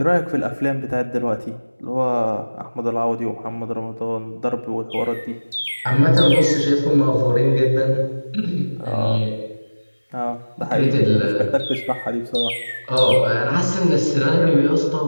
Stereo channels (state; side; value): inverted; both; correlation -1.00